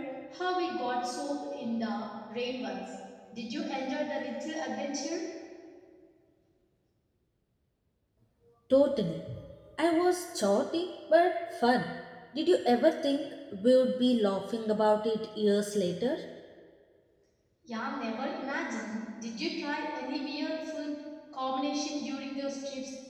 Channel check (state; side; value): identical; both; correlation 1.00